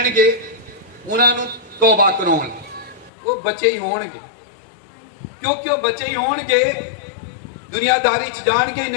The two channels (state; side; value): drops out; right; at 3.1 s